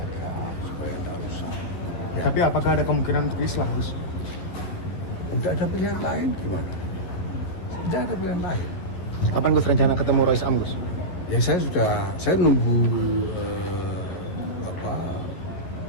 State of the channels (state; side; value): late; right; 11 ms